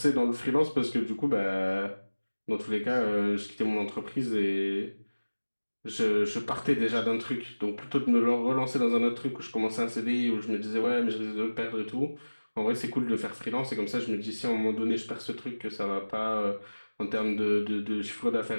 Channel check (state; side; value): inverted; both; correlation -1.00